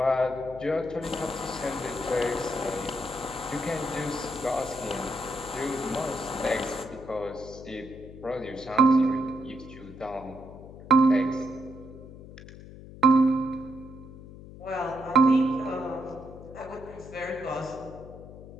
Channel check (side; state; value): left; noise; hum, 16 dB below the sound